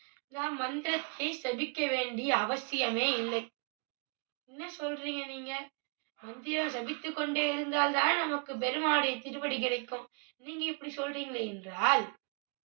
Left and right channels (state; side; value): quieter; left; 37.3 dB